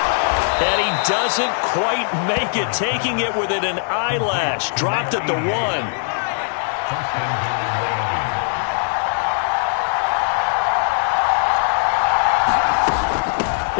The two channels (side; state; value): right; silent; digital silence